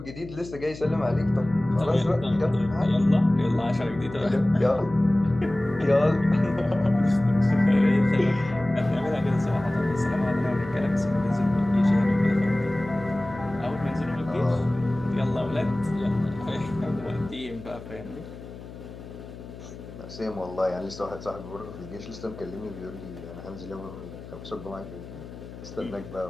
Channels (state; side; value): noise; left; hum, 14 dB below the sound